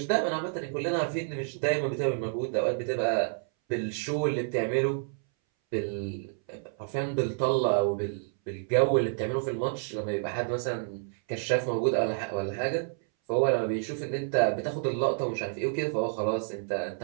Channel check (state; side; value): silent; left; 58 dB below the other